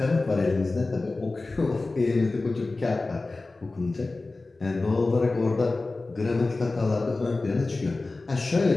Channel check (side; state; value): right; quieter; 3.3 dB